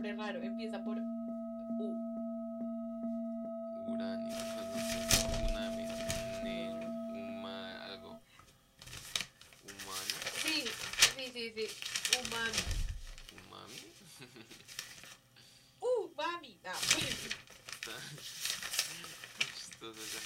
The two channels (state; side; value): identical; both; correlation 1.00